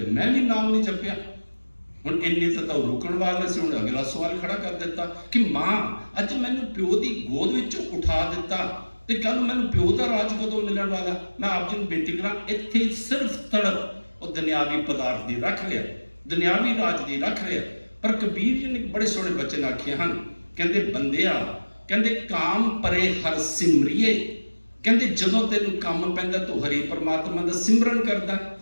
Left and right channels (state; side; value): inverted; both; correlation -1.00